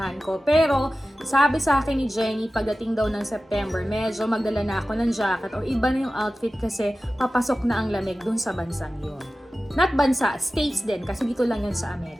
ko. Pero, sabi sa akin ni Jenny, pagdating daw ng September, medyo magdala na ako ng jacket o iba na yung outfit kasi papasok na ang lamig dun sa bansang yun. Not bansa, states din kasi dito lang yun sa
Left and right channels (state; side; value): normal; both; correlation 0.95